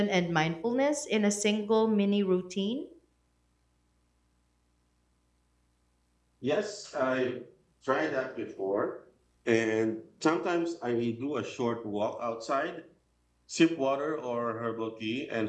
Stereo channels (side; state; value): both; identical; correlation 1.00